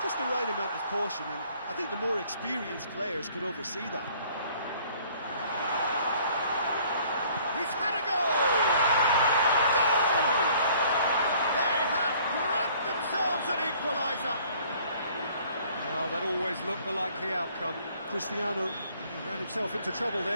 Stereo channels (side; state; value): both; inverted; correlation -0.57